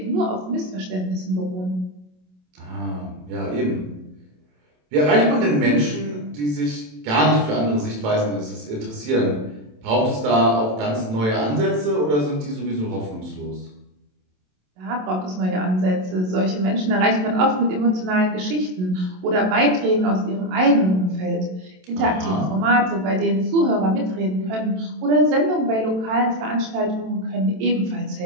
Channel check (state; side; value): late; left; 27 ms